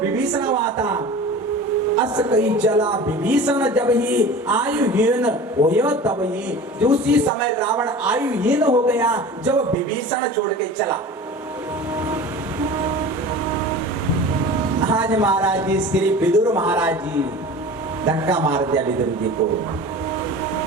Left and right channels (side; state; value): both; normal; correlation 0.37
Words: हुआ था। अस कई चला विभीषण जब ही आयुहीन होयो तब ही, उसी समय रावण आयुहीन हो गया जब विभीषण छोड़ के चला। आज महाराज जी श्री विदुर महाराज जी धक्का मार दिया विदुर जी को।